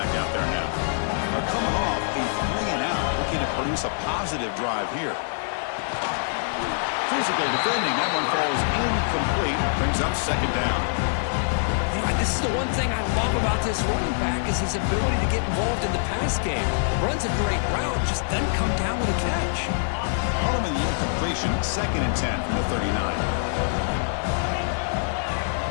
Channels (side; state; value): right; silent; 61 dB below the other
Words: out there now. They're coming off a 3-and-out, looking to produce a positive drive here. Physical defending. That one falls incomplete. Brings up second down. You know, this is the one thing I love about this running back is his ability to get involved in the pass game. Runs a great route, just doesn't come down with a catch. Harmon the incompletion. Second and 10 from the 39.